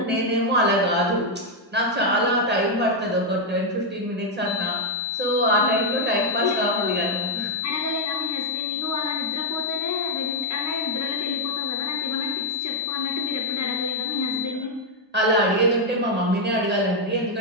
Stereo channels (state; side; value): normal; both; correlation 0.00